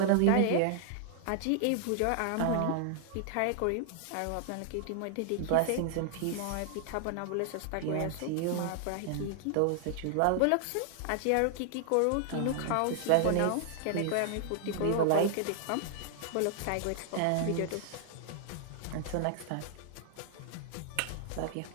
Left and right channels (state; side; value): different; both; correlation 0.00